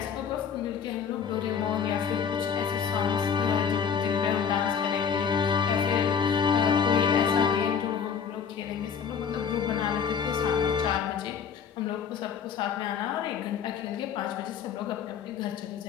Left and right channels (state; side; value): quieter; right; 7.1 dB